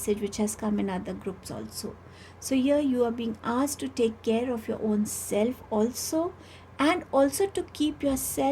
which has come in other groups also. So here you are being asked to take care of your own self also, and also to keep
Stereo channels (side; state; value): both; identical; correlation 1.00